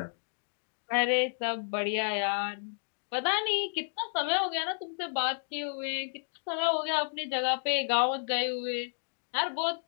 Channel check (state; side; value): silent; right; digital silence